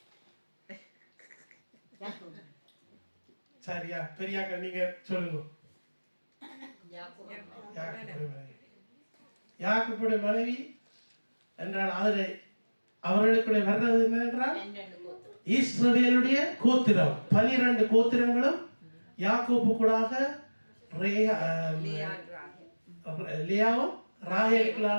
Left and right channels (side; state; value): both; inverted; correlation -1.00